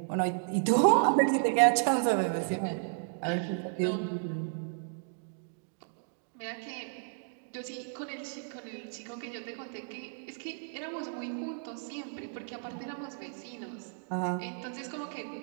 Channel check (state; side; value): silent; left; digital silence